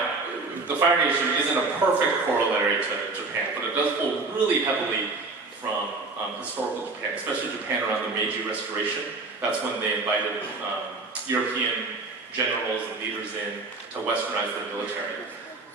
the Fire Nation isn't a perfect corollary to Japan, but it does pull really heavily from historical Japan, especially Japan around the Meiji Restoration. That's when they invited European generals and leaders in to westernize their military.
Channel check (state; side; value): quieter; left; 3.7 dB